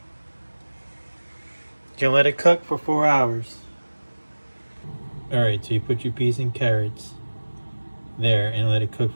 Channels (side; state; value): both; inverted; correlation -1.00